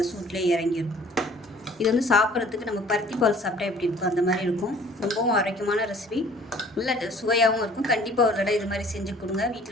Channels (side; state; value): both; normal; correlation 0.53